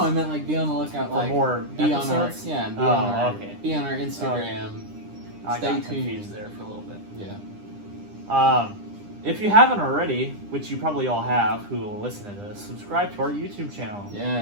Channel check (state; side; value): late; left; 9.9 ms